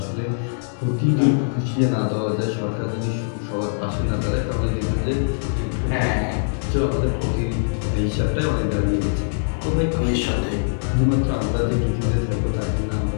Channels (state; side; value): silent; right; digital silence